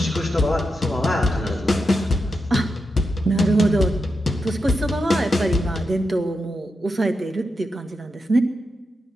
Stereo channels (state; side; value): normal; both; correlation 0.87